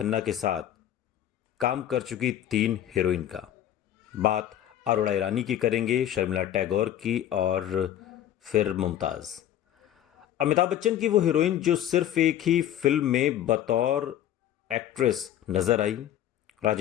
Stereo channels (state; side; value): quieter; right; 11.4 dB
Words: के साथ काम कर चुकी 3 हीरोइन का। बात अरोड़ा ईरानी की करेंगे, शर्मिला टैगोर की और फिर मुमताज। अमिताभ बच्चन की वो हीरोइन जो सिर्फ एक ही फिल्म में बतौर एक्ट्रेस नजर आई।